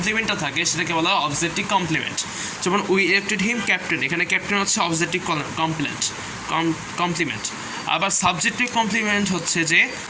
থাকে সেটাকে বলা হয় অবজেক্টিভ কমপ্লিমেন্ট। যেমন উই ইলেক্টেড হিম ক্যাপ্টেন, এখানে ক্যাপ্টেন হচ্ছে অবজেক্টিভ কমপ্লিমেন্ট। আবার সাবজেক্টিভ কমপ্লিমেন্ট হচ্ছে যে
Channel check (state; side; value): identical; both; correlation 1.00